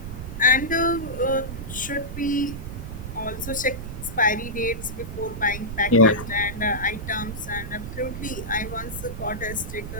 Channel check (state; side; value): noise; right; rumble, 8 dB below the sound